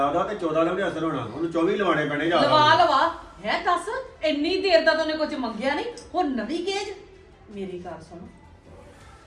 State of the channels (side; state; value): both; identical; correlation 1.00